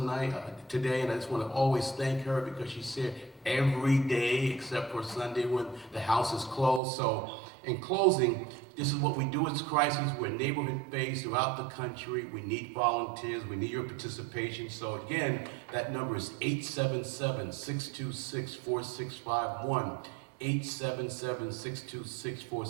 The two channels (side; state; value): left; drops out; at 6.8 s